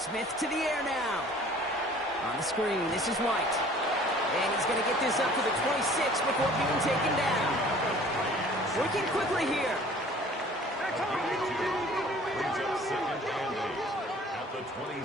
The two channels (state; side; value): normal; both; correlation 0.50